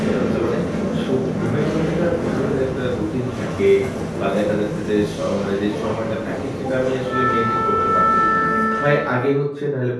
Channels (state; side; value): identical; both; correlation 1.00